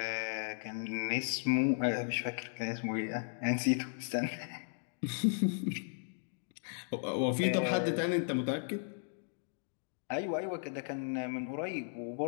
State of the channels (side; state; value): right; silent; digital silence